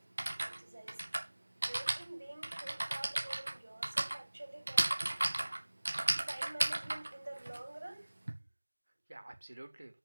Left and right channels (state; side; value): inverted; both; correlation -1.00